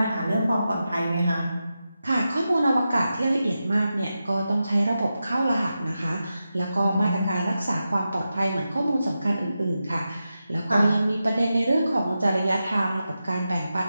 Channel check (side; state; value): both; inverted; correlation -0.91